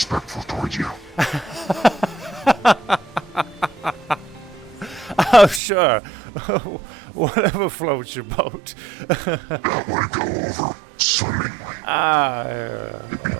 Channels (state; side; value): drops out; left; at 5.6 s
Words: toward you. Oh, sure. Whatever floats your boat. That would go over swimmingly. It'd be